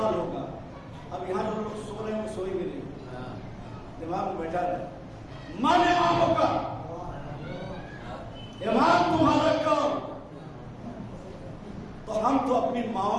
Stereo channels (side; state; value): both; identical; correlation 1.00